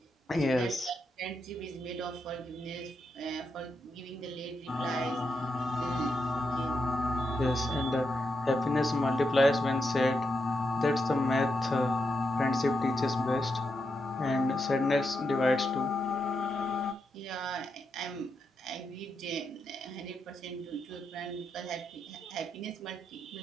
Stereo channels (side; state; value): both; normal; correlation 0.84